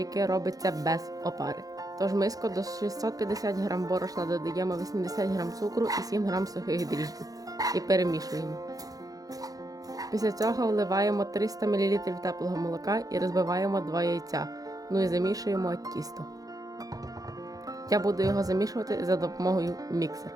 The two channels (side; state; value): left; late; 0.17 ms